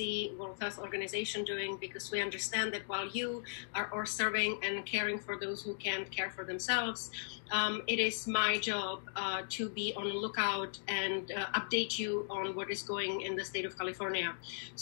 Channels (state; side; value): silent; right; digital silence